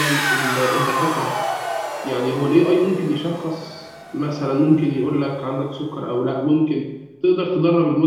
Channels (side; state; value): both; identical; correlation 1.00